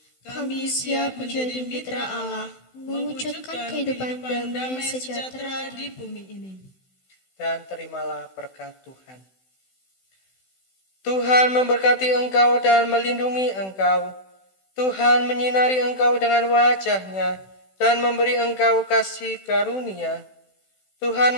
Kami siap menjadi mitra Allah, mewujudkan kehidupan damai sejahtera di bumi ini. Dan terimalah berkat Tuhan. Tuhan memberkati engkau dan melindungi engkau. Tuhan menyinari engkau dengan wajah-Nya dan memberi engkau kasih karunia. Tuhan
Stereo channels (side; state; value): right; late; 16 ms